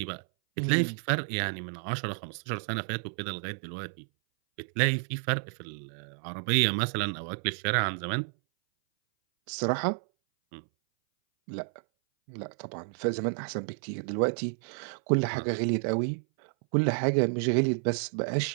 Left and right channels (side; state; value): left; silent; 58 dB below the other